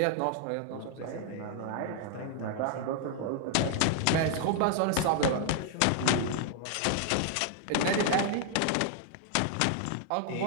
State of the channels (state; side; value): different; both; correlation 0.00